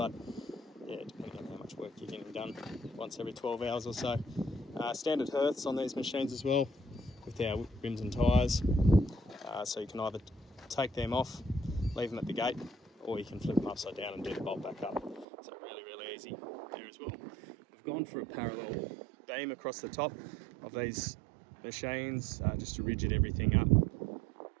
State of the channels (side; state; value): left; drops out; at 15.2 s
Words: yeah, depending on how much work you're getting done, once every 12 hours or so. Standard hearths on these machines as well, with our rims and tyres. So you can either take them off, leave them at the gate, or you can flip them upside down and do the bolt back up. So really, really easy here as well. We've gone for a parallel beam across the top of these machines, just to rigid everything up and